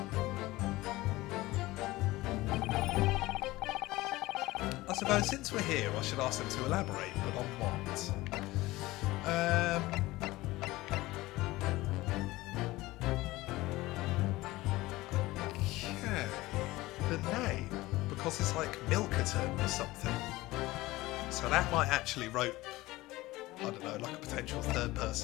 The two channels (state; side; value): quieter; right; 19.0 dB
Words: I suppose since we're here, I should ask them to elaborate, but on what? Okay. The name, because it's like Milkerton or something. So that might actually rope, I don't know, like a potential third